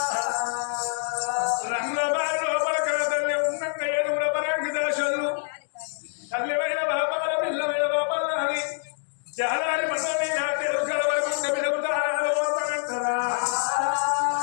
రంగుల బారి లోపల కల తల్లి ఉన్నంగా ఏడుగుల పరంగి దశలు తల్లివైన బాపాల పిల్లమైన బాపాల అని జాలారి మనో మీద తెలుగు కలవకుంట పిలుగుతారాలు వస్తానంటారా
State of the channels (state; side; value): silent; right; digital silence